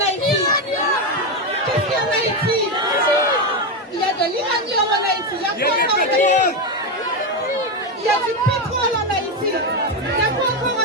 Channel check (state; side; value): normal; both; correlation 0.10